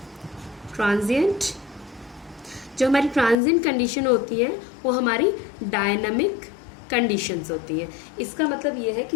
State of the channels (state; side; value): drops out; right; at 3.4 s